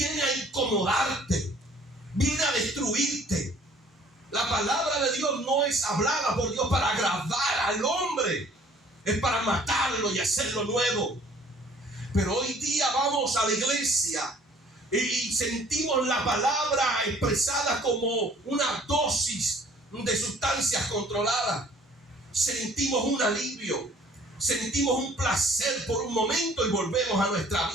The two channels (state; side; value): normal; both; correlation 0.55